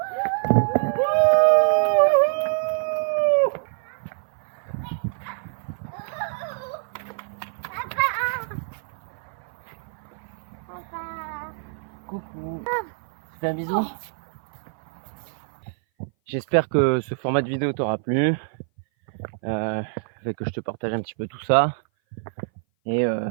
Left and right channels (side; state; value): left; silent; 57 dB below the other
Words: Coucou. Tu fais un bisou? J'espère que ce format de vidéo t'aura plu. fait que je te partage un petit peu tout ça. Et